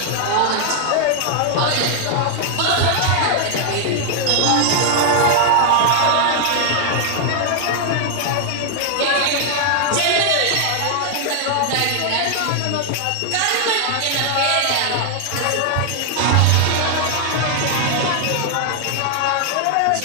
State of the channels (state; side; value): different; both; correlation 0.00